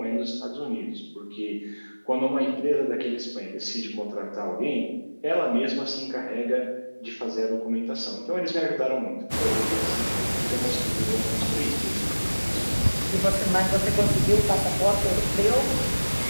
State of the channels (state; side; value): inverted; both; correlation -1.00